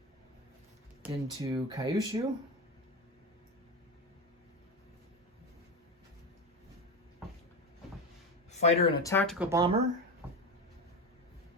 into Kyushu. Fighter and a tactical bomber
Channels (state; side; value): normal; both; correlation 0.18